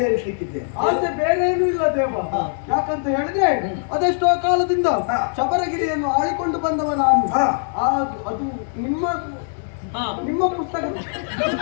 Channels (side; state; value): right; silent; 65 dB below the other